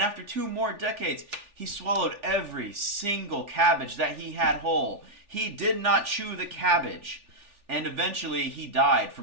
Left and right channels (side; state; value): left; late; 3.4 ms